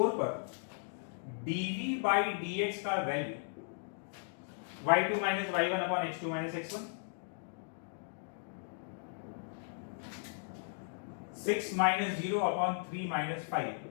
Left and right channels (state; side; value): silent; right; digital silence